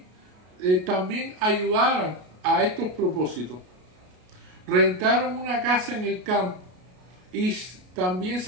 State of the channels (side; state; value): left; late; 33 ms